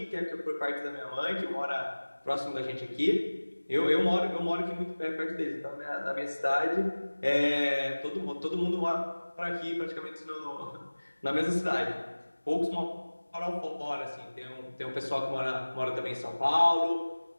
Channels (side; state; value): both; inverted; correlation -1.00